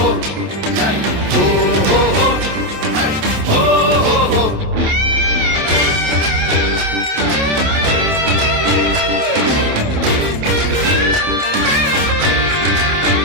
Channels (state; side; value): late; left; 27 ms